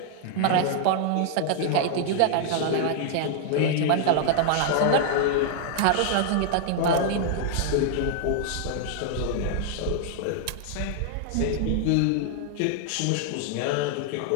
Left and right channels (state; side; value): different; both; correlation 0.00